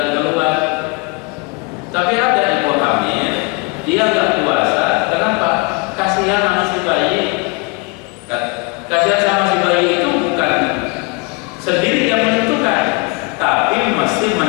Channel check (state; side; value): quieter; right; 29.6 dB